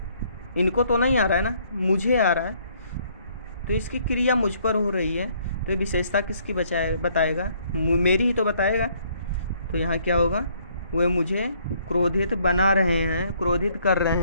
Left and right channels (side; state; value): both; inverted; correlation -0.65